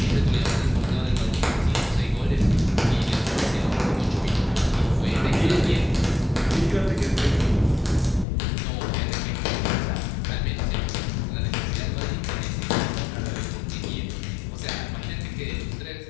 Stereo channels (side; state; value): right; drops out; at 8.2 s